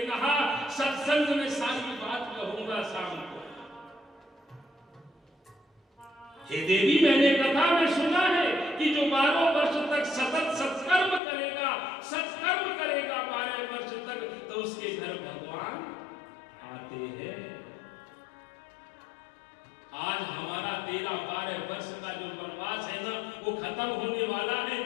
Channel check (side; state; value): right; drops out; at 11.2 s